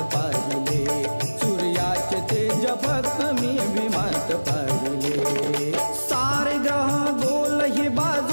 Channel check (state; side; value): inverted; both; correlation -1.00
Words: पाहिले, सूर्याचे तेज फक्त मी भीमात पाहिले। सारे ग्रह गोल हे